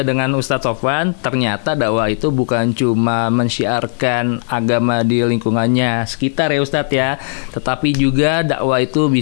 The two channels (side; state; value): right; silent; 60 dB below the other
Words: dengan Ustadz Sofwan, ternyata dakwah itu bukan cuma mensyiarkan agama di lingkungannya sekitar ya Ustadz ya, tetapi juga dakwah itu